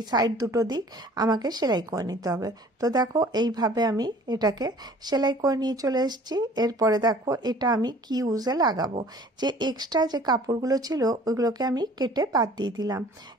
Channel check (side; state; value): both; normal; correlation 0.50